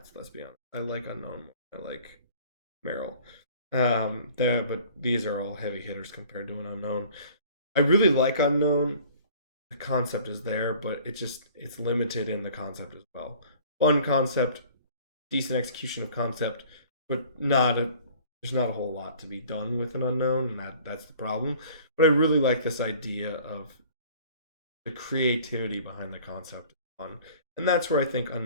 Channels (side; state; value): both; inverted; correlation -0.50